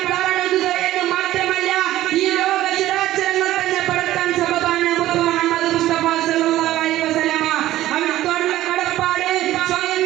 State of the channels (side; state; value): left; quieter; 14.7 dB